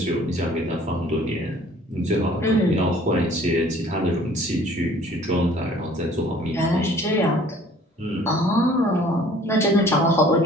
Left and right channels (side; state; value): both; normal; correlation 0.53